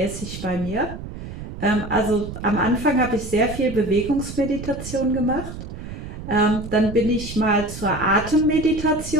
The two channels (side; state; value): right; noise; rumble, 10 dB below the sound